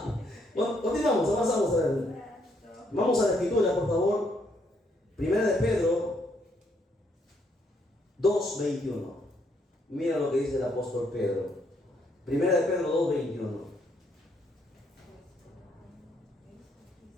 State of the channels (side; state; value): both; normal; correlation 0.72